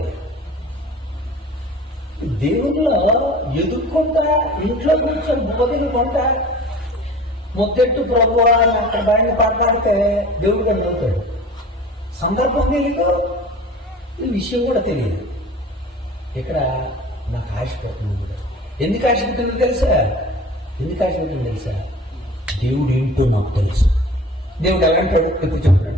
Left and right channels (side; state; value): both; normal; correlation 0.41